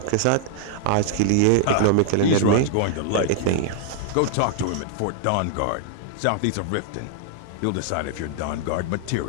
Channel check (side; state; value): both; different; correlation -0.01